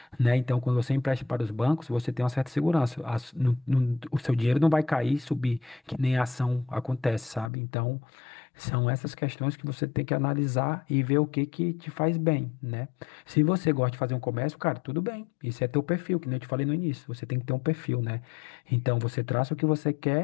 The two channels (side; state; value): right; drops out; at 7.5 s